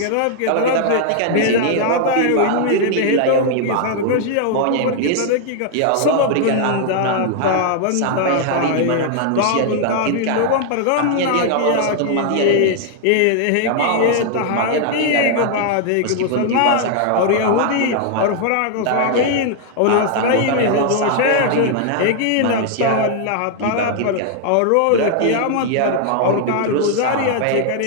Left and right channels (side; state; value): both; different; correlation 0.00